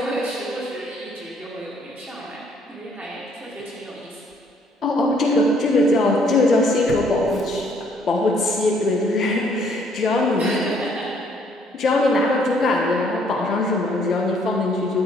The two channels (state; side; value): normal; both; correlation 0.65